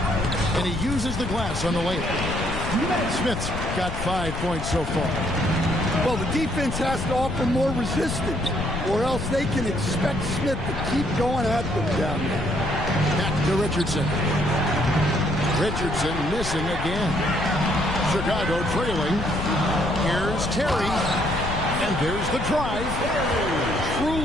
And he uses the glass on the layup. Smith's got 5 points so far. Well, the defense has to offer more resistance, or else they can expect Smith to keep going at them down there. Back to Richardson. Richardson missing again. Chicago trailing. Here's Terry. And there's the drive.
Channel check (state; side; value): noise; left; rumble, 5 dB below the sound